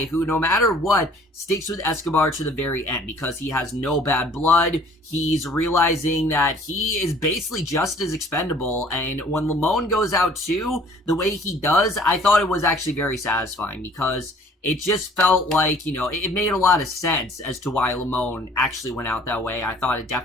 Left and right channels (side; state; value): both; normal; correlation 0.54